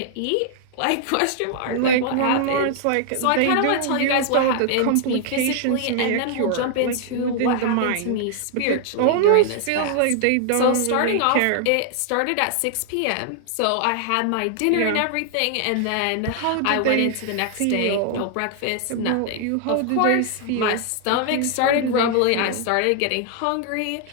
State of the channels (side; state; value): both; different; correlation 0.00